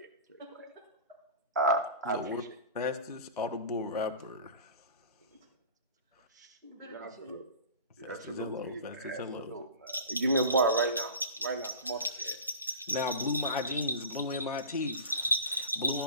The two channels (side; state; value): both; inverted; correlation -0.35